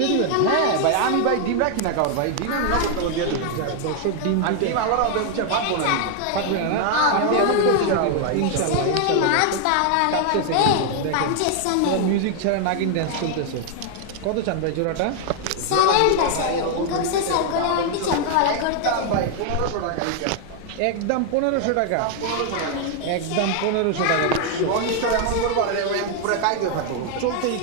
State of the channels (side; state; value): both; different; correlation 0.00